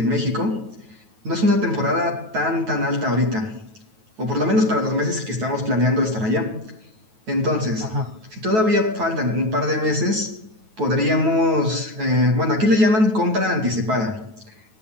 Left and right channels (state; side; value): late; left; 9.3 ms